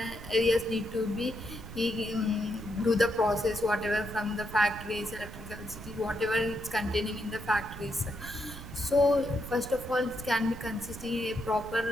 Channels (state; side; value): noise; right; rumble, 12 dB below the sound